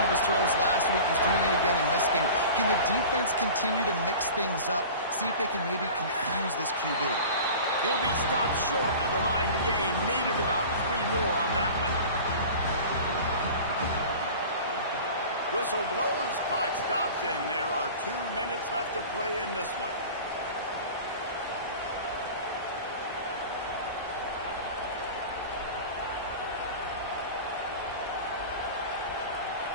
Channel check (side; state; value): both; inverted; correlation -0.38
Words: of his throws last week. He's doing it again in this game. Can the defense continue to mix things up, see if they can maybe confuse this QB? He'll be stopped short of the line to gain. Needed about 3 more on that one. Whistle blows, clock stops, and there are 2 minutes left to play in this one.